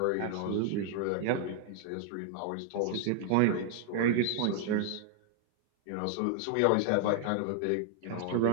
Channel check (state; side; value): different; both; correlation 0.00